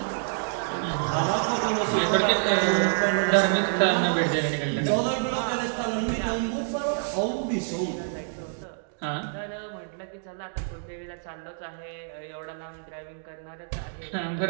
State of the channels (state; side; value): silent; left; digital silence